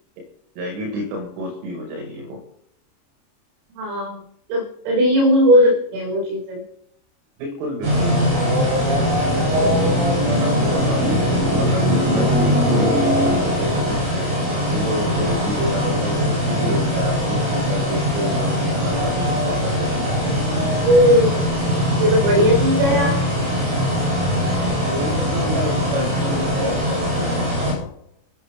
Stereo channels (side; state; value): left; late; 29 ms